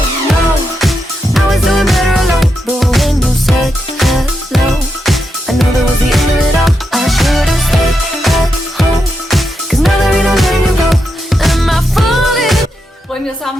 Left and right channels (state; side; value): normal; both; correlation 0.84